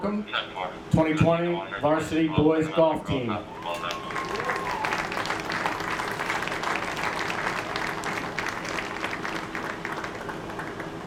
2020 varsity boys golf team.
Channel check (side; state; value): both; identical; correlation 1.00